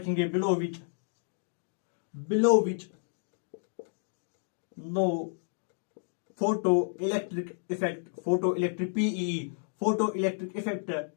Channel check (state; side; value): silent; right; digital silence